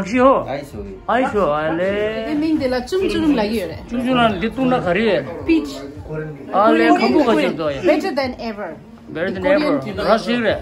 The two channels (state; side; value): identical; both; correlation 1.00